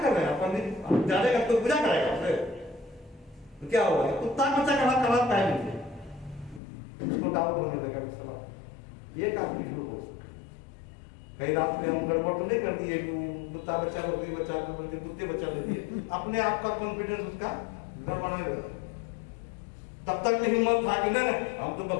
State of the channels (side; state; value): right; drops out; at 6.6 s